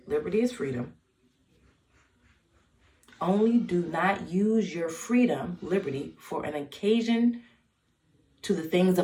Liberty is freedom. Only do not use your freedom, liberty, for an occasion to the things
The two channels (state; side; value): identical; both; correlation 1.00